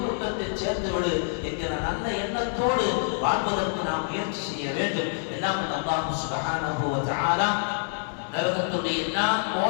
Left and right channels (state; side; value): silent; right; 60 dB below the other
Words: கூட்டத்தில் சேர்த்து விடு என்கிற நல்ல எண்ணத்தோடு வாழ்வதற்கு நாம் முயற்சி செய்ய வேண்டும். எல்லாம் அல்லாஹ் சுப்ஹானஹு வ தஆலா நரகத்துடைய எல்லா